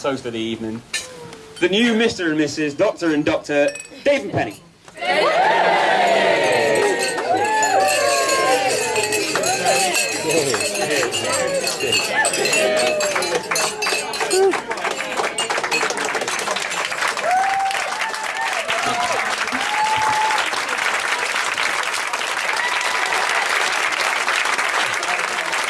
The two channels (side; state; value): both; identical; correlation 1.00